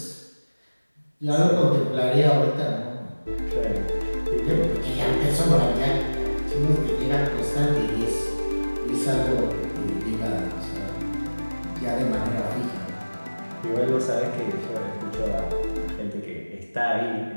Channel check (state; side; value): inverted; both; correlation -1.00